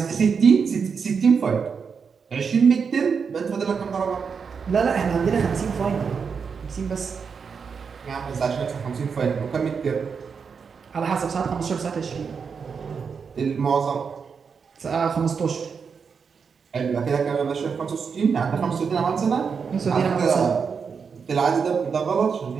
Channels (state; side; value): quieter; left; 5.9 dB